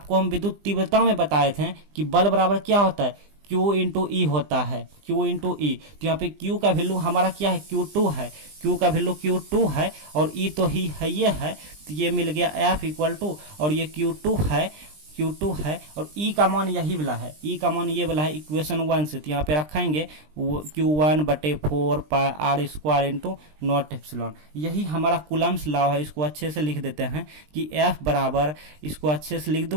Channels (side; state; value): left; late; 20 ms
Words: हम विद्युत तीव्रता में बताए थे कि बल बराबर क्या होता है, Q इंटू ई होता है, Q इंटू ई। तो यहाँ पे Q का वैल्यू हमारा क्या है, Q2 है, Q का वैल्यू Q2 है और E तो ही है, ये है, तो ये मिल गया F इक्वल टू, और ये Q2 है और E का मान यही वाला है, E का मान ये वाला है इक्वेशन 1 से। तो यहाँ पे रखेंगे Q1/4πr² इंटू नॉट एप्सिलॉन। यही हमारा कूलम्स लॉ है। इसको अच्छे से लिख देते हैं कि F बराबर, इसको अच्छे से लिख